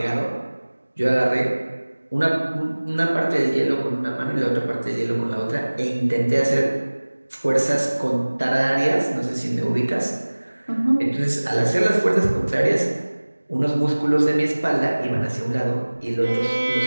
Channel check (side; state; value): both; inverted; correlation -1.00